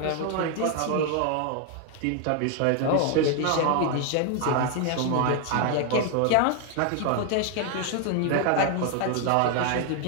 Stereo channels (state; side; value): different; both; correlation 0.00